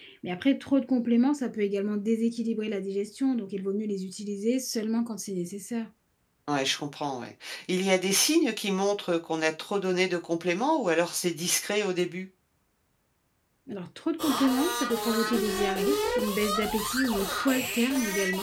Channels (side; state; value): both; identical; correlation 1.00